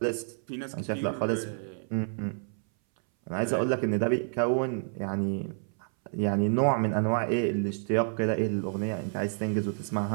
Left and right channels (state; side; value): silent; left; 58 dB below the other